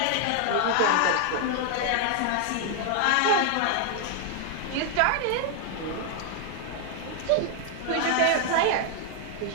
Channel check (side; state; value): both; different; correlation 0.00